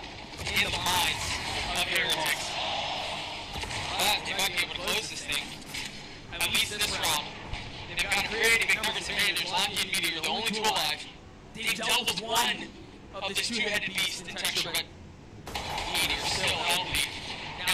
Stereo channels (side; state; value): both; identical; correlation 1.00